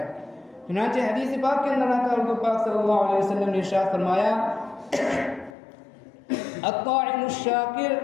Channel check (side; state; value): right; drops out; at 5.6 s